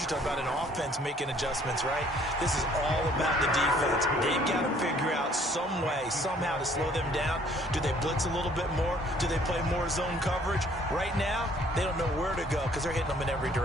talk about an offense making adjustments, right? This is all about the defense. They've got to figure out some way, somehow to slow them down. Do they blitz a little bit more? Do they play more zone coverage? Right now, they don't know where to go because they're hitting them in every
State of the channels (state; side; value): normal; both; correlation 0.59